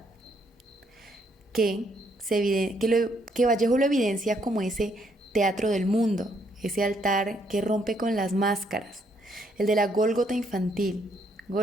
que Vallejo lo evidencia como ese teatro del mundo, ese altar que rompe con las máscaras, el de la Gólgota infantil.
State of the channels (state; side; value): normal; both; correlation 0.71